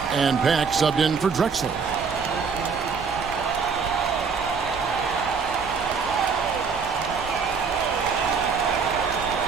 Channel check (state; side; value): quieter; left; 5.5 dB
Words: And Pack subbed in for Drexler.